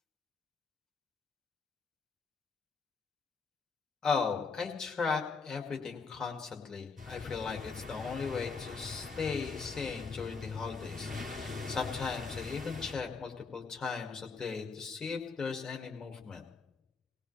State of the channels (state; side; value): quieter; right; 4.8 dB